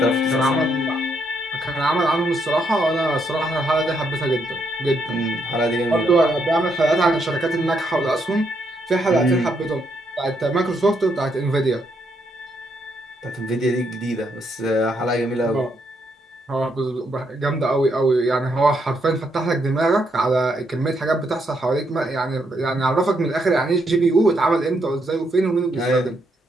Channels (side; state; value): both; normal; correlation 0.76